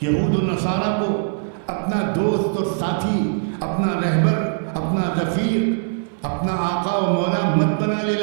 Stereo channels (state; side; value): silent; left; 63 dB below the other